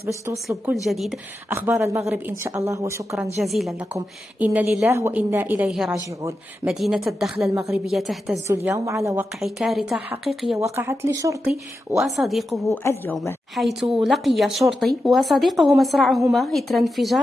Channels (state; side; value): normal; both; correlation 0.90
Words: باش توصلوا بكل جديد أخبار المغرب إن شاء الله، وشكرا جزيلا لكم. إن لله وإنا إليه راجعون. مدينة الدخلة المغربية تهتز اليوم على وقع كارثة حقيقية وقعت لشرطي وصديقه اليوم، حيث لقي شرطي وصديقه مصرعهما إثر